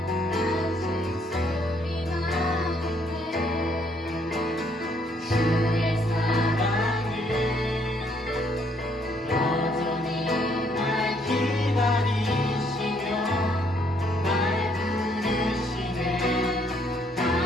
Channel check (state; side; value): normal; both; correlation 0.68